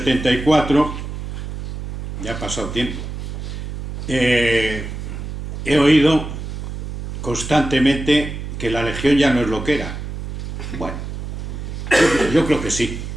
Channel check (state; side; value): noise; right; hum, 7 dB below the sound